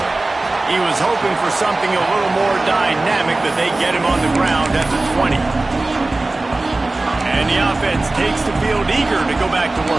He was hoping for something a little more dynamic, but they get him on the ground at the 20. And the offense takes the field eager to go back to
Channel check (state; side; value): quieter; left; 3.0 dB